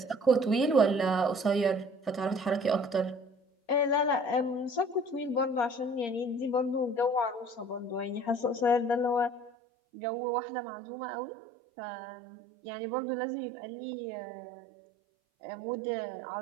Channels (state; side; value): drops out; left; at 9.5 s